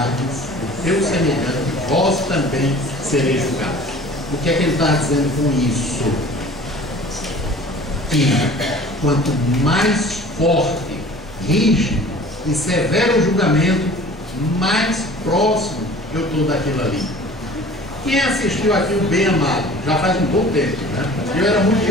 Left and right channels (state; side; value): normal; both; correlation 0.46